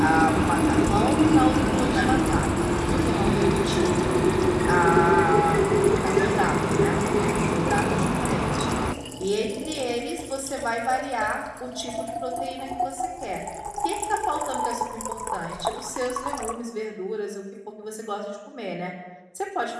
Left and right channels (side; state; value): both; identical; correlation 1.00